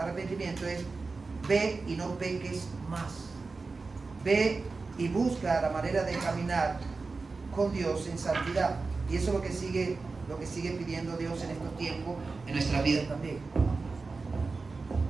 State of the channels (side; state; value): left; quieter; 4.1 dB